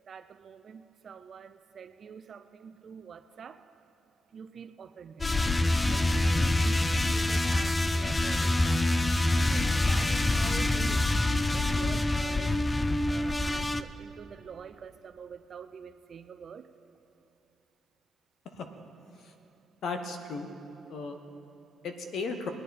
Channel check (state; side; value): normal; both; correlation 0.94